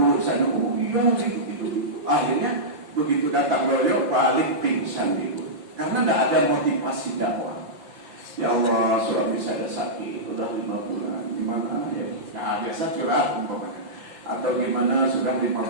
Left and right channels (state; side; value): late; left; 5.7 ms